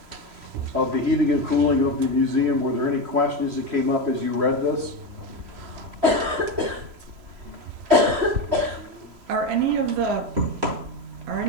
of the heating and cooling of the museum? Were there any questions that came up as you read this? Are any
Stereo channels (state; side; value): late; left; 3.0 ms